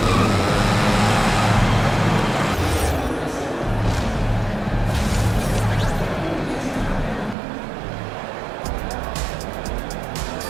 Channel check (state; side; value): drops out; left; at 7.4 s